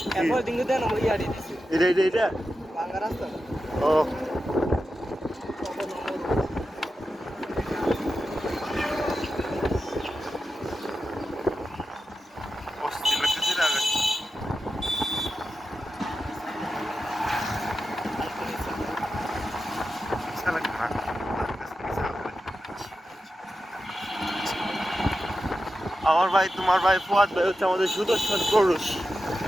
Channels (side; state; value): both; normal; correlation 0.91